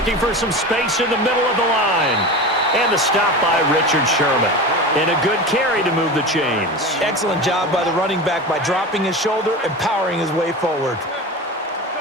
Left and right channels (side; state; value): both; normal; correlation 0.28